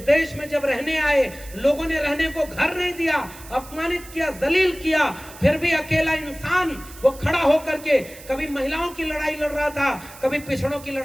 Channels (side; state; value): right; noise; hiss, 18 dB below the sound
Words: देश में जब रहने आए, लोगों ने रहने को घर नहीं दिया, अपमानित किया, जलील किया, फिर भी अकेला इंसान वो खड़ा होकर के कभी महिलाओं की लड़ाई लड़ रहा था, कभी पिछड़ों की